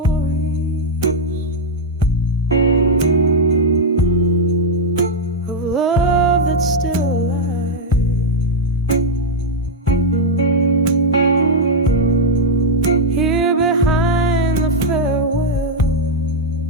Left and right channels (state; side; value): normal; both; correlation -0.01